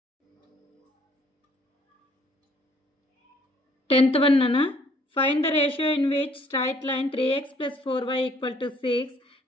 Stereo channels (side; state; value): both; normal; correlation 0.62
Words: Tenth one nana. Find the ratio in which straight line 3x plus 4y equal to 6